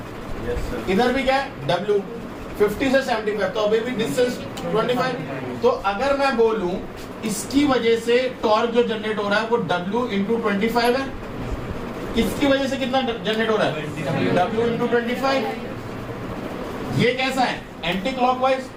Yes, sir. इधर भी क्या है W 50 से 75, तो अभी भी डिस्टेंस 25। तो अगर मैं बोलूं इसकी वजह से टॉर्क जो जनरेट हो रहा है वो W into 25 है, इसकी वजह से कितना जनरेट हो रहा है, W into 25। ये कैसा है, एंटी क्लॉकवाइज,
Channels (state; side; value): identical; both; correlation 1.00